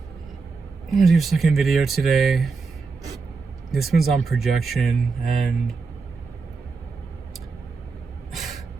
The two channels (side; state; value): left; quieter; 4.5 dB